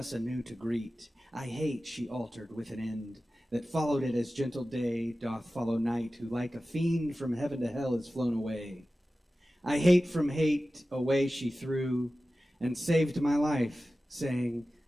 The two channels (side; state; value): both; normal; correlation 0.95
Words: anew to greet. I hate, she altered with an end, that followed it as gentle day doth follow night, who like a fiend from heaven to hell is flown away. I hate from hate away she threw, and saved my life, saying,